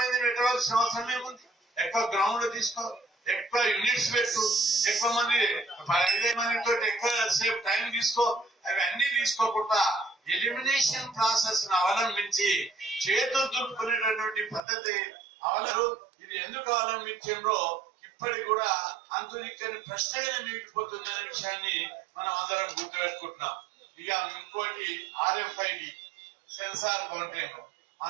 పెట్టవలసిన అవసరం ఏముంది? ఎక్కువ గ్రౌండ్ తీసుకో, ఎక్కువ యూనిట్స్ పెట్టు, ఎక్కువ మంది 5 మందితో ఎక్కువ సేపు టైం తీసుకో. అవన్నీ తీసుకోకుండా ఎలిమినేషన్ ప్రాసెస్ ను అవలంబించి చేతులు దులుపుకునేటటువంటి పద్ధతి అవలరు. ఇది ఎందుకు అవలంబించారో ఇప్పటికి కూడా అంతునిక్కని ప్రశ్నగానే మిగిలిపోతుంది అనే విషయాన్ని మనం అందరం గుర్తుపెట్టుకుంటున్నాం. ఇక ఇంకోటి RFID సెన్సార్ కౌంటింగ్. ఆ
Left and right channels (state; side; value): drops out; left; at 14.6 s